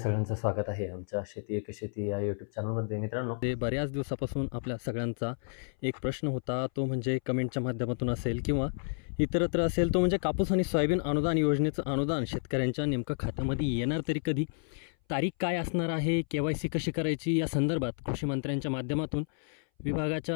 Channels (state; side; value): silent; right; 57 dB below the other